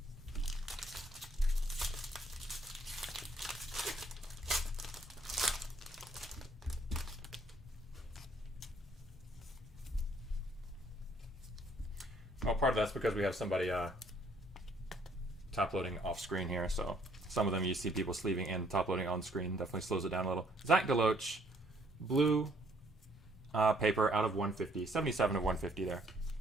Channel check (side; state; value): both; normal; correlation 0.65